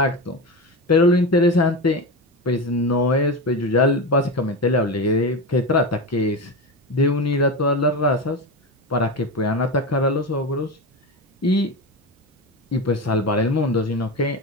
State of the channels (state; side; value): normal; both; correlation 0.20